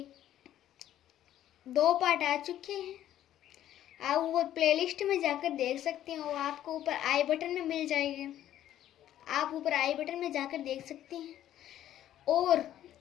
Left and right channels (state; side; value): quieter; right; 12.0 dB